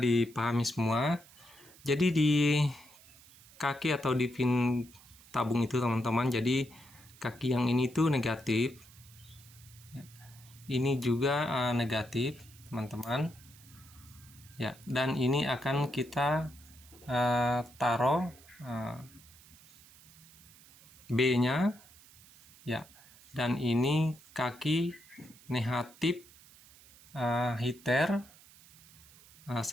semua. Jadi di kaki atau di pin tabung itu teman-teman, jadi kaki yang ini tuh negatif. Ya, ini juga negatif teman-teman. Ya, dan ini akan kita taruh B-nya. Ya, dan ini kaki negatif heater.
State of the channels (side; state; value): right; noise; hiss, 23 dB below the sound